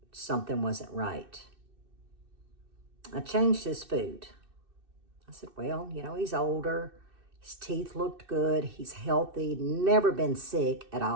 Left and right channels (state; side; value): late; left; 2.6 ms